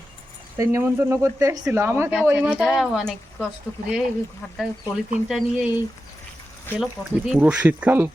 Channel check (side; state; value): both; normal; correlation 0.91